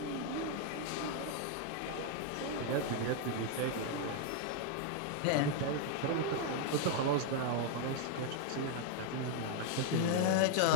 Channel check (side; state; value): both; different; correlation 0.00